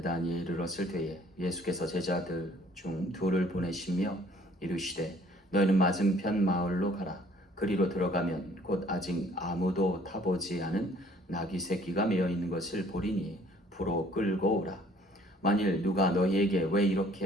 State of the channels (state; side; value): normal; both; correlation 0.58